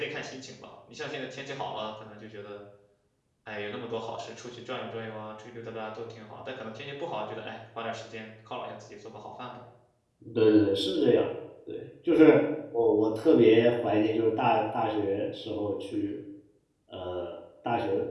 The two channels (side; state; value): both; identical; correlation 1.00